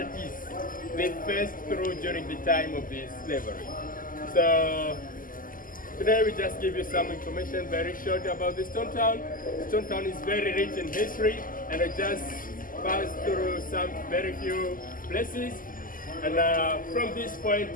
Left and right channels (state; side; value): late; right; 0.41 ms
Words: they faced through during the time of the slavery. So today we just give you some information very short about the stone town. Stone town is very rich in history, and I just passed through some very few places. And from this point,